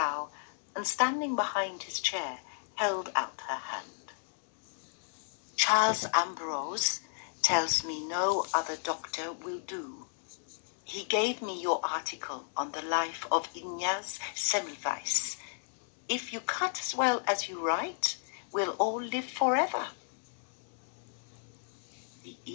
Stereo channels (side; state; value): right; silent; digital silence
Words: and standing behind his chair, held out her hand. Charles Ambrose tells me no other doctor will do. He gave me your article on the life of Ignaz Semmelweis. If you cut as well as you write, we'll all live forever. The